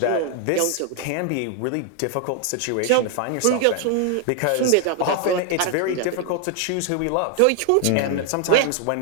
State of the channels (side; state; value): both; different; correlation 0.00